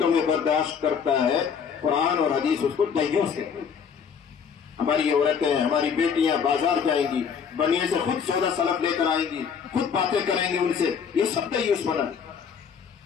میں برداشت کرتا ہے، قرآن اور حدیث اس کو دیوس کہتے ہیں۔ ہماری عورتیں، ہماری بیٹیاں بازار جائیں گی، بنیے سے خود سودا سلف لے کر آئیں گی، خود باتیں کریں گی ان سے، یہ سب دیوس بنا۔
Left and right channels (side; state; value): right; quieter; 6.9 dB